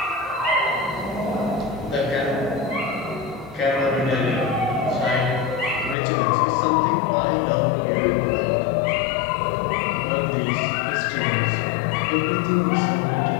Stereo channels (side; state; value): right; drops out; at 6.0 s